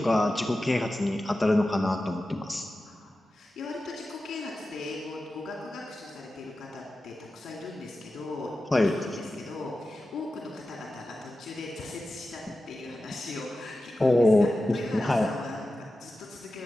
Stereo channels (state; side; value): normal; both; correlation 0.93